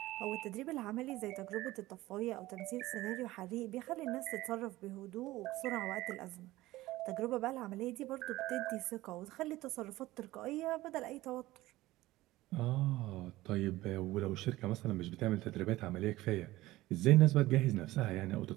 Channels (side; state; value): left; quieter; 17.5 dB